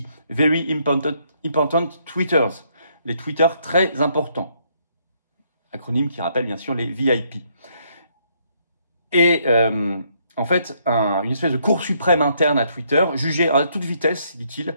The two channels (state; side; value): inverted; both; correlation -0.71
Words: Very Important Tweeters, les tweeters très importants, acronyme qui rappelle bien sûr les VIP. Et en fait, une espèce de cour suprême interne à Twitter jugeait à toute vitesse, dit-il,